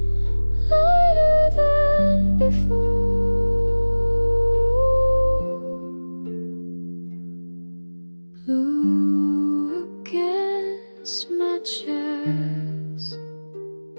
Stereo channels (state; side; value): inverted; both; correlation -1.00